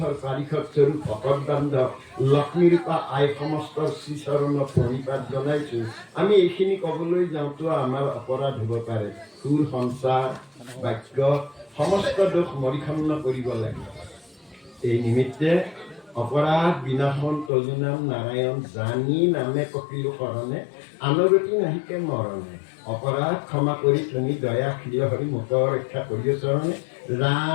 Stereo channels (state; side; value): drops out; right; at 17.5 s